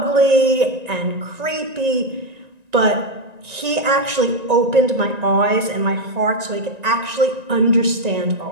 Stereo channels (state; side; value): late; left; 1.9 ms